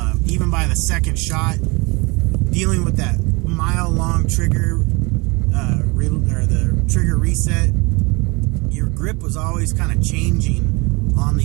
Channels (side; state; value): left; quieter; 27.0 dB